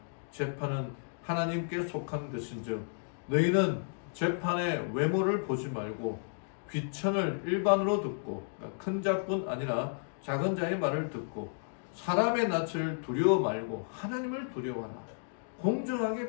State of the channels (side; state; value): right; silent; digital silence